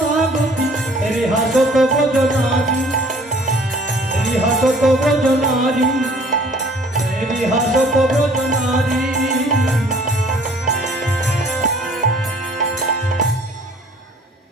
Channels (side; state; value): both; normal; correlation 0.54